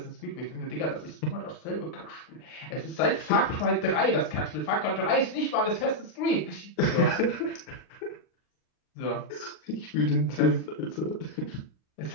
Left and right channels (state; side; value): late; right; 39 ms